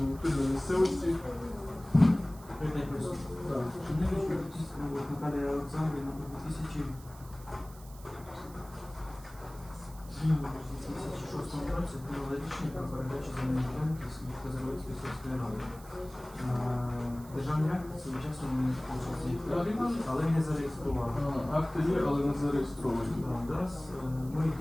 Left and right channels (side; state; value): right; noise; hiss, 21 dB below the sound